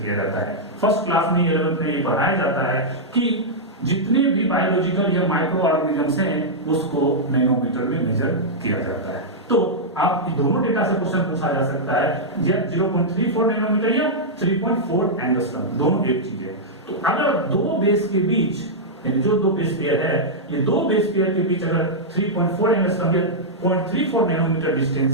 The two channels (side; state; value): both; normal; correlation -0.08